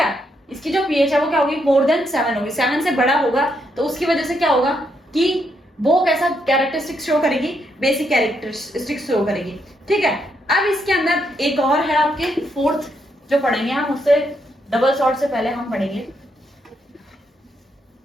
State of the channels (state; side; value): normal; both; correlation 0.77